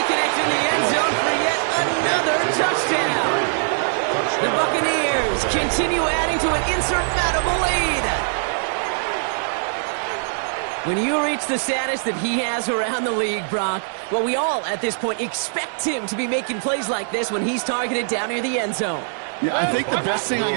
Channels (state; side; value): silent; left; digital silence